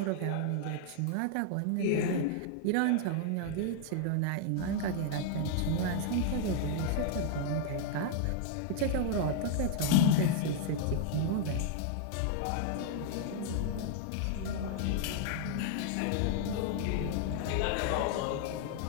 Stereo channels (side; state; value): both; different; correlation -0.01